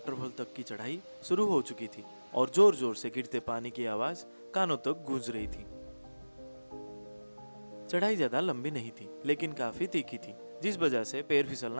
तक की चढ़ाई शुरू हो चुकी थी और जोर जोर से गिरते पानी की आवाज कानों तक गूंज रही थी। चढ़ाई ज्यादा लंबी नहीं थी, लेकिन काफी तीखी थी, जिस वजह से पैर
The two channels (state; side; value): inverted; both; correlation -1.00